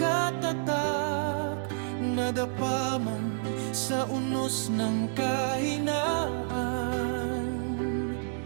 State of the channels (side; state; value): left; silent; digital silence